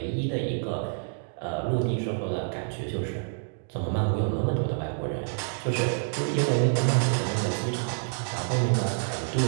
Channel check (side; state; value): left; silent; digital silence